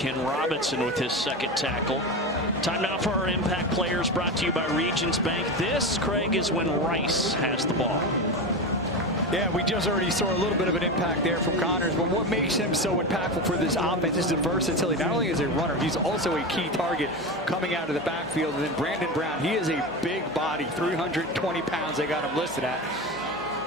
Robinson with his 2nd tackle. Time now for our impact players, brought to you by Regions Bank. This, Craig, is when Rice has the ball. Yeah, we just already saw a little bit of an impact there from Connors, but what makes him so impactful for this offense is the versatility. Not only is he a runner, he's also a key target coming out of the backfield. And then Brandon Brown, he is a big body, 320 pounds they got him listed at.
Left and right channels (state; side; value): normal; both; correlation 0.22